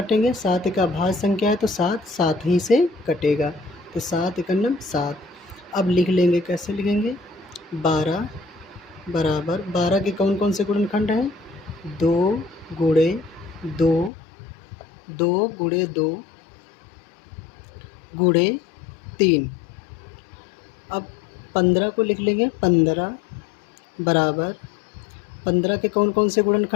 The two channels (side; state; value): right; drops out; at 14.1 s